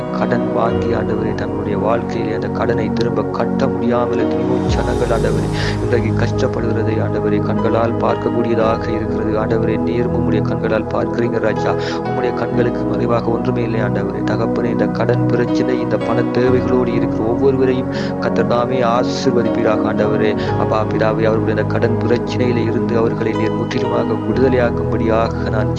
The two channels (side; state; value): both; identical; correlation 1.00